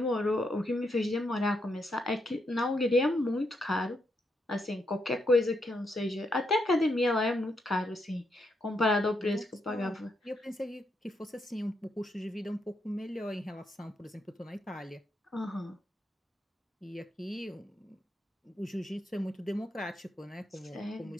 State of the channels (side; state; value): both; normal; correlation 0.80